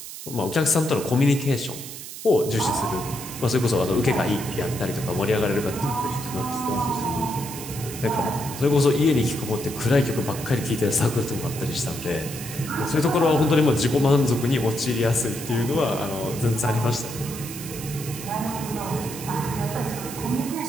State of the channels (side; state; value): right; noise; hiss, 11 dB below the sound